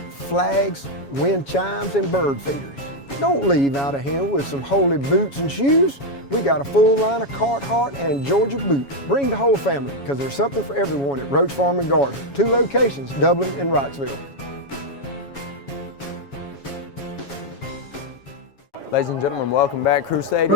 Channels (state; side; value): late; right; 7.2 ms